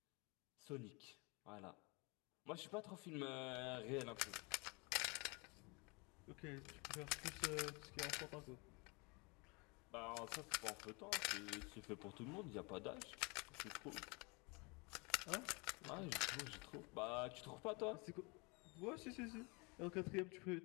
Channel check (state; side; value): quieter; right; 29.3 dB